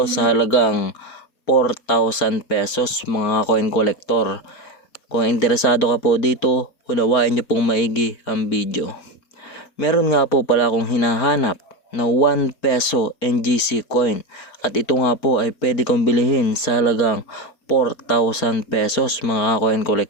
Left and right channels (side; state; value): right; late; 4.5 ms